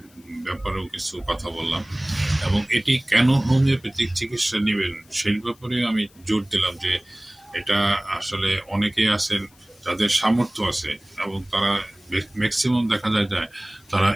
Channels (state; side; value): noise; left; hiss, 29 dB below the sound